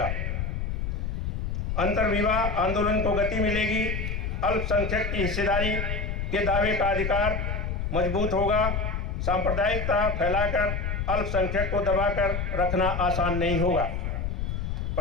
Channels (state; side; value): noise; left; rumble, 2 dB below the sound